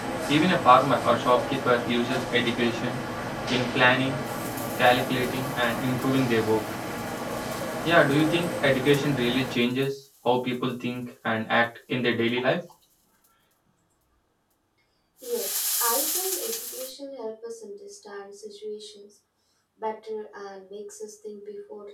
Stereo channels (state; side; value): identical; both; correlation 1.00